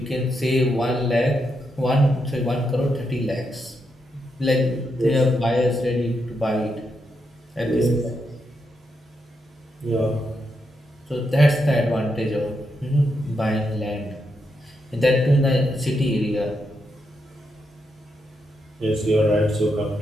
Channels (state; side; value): normal; both; correlation 0.82